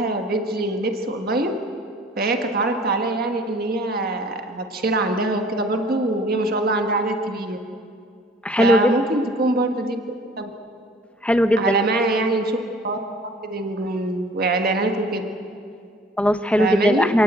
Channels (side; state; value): both; normal; correlation 0.52